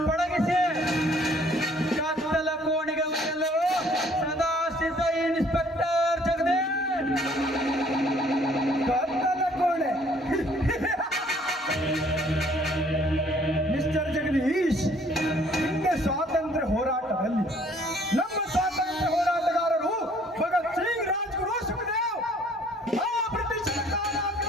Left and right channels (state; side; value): normal; both; correlation 0.60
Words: ಪಳಗಿಸಿ ಕತ್ತಲ ಕೋಣಿಗೆ ಒಯ್ಯಲು ಸದಾ ಸಿದ್ಧ ಇನ್ಸ್ಪೆಕ್ಟರ್ ಜಗದೀಶ್. ಕತ್ತಲ ಕೋಣೆ ಮಿಸ್ಟರ್ ಜಗದೀಶ್, ಹಿಂದೆ ಸ್ವಾತಂತ್ರ್ಯ ಹೋರಾಟದಲ್ಲಿ ನಮ್ಮ ಸ್ವಾತಂತ್ರ್ಯ ಹೋರಾಟಗಾರರು ಭಗತ್ ಸಿಂಗ್, ರಾಜ್ಗುರು, ಸುಖದೇವ್ ಆ ಬ್ರಿಟಿಷರ